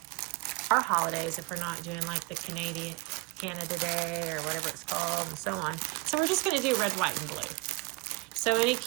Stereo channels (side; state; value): left; quieter; 25.8 dB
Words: holidays if we're not doing like the Canada Day or whatever it's called and so on. So we're just going to do red, white, and blue. So any